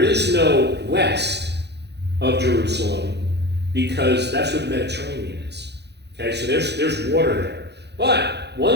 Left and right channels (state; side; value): late; left; 0.49 ms